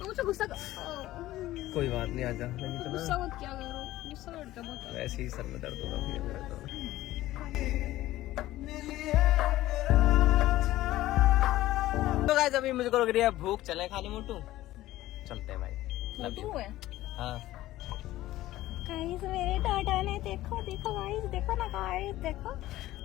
मुझे गुस्सा कोई बात नहीं, आजा। नहीं तो गुस्सा मत क्या करो, गुस्सा करते बहुत। वैसे ही सर में दर्द होगा फिर मेरा तो। तो गाइस अभी मुझको लग रही है भूख, चले खाली मोटू। चलते हैं भाई। Love you. हाँ गाइस मेरे टाटा ने देखो गाइस, देखो ना गाइस, देखो।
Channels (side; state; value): right; quieter; 15.7 dB